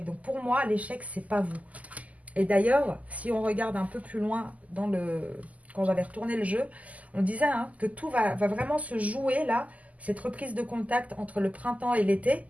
Donc pour moi, l'échec, c'est pas vous. Et d'ailleurs, si on regarde un peu plus loin quand j'avais retourné le jeu, on disait hein, que tout va vraiment se jouer là, cette reprise de contact entre le printemps et l'été.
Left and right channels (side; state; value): left; late; 0.074 ms